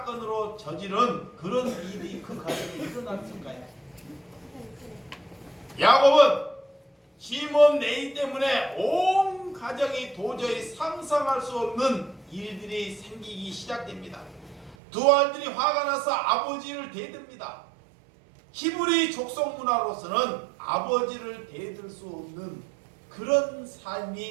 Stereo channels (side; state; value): left; drops out; at 14.8 s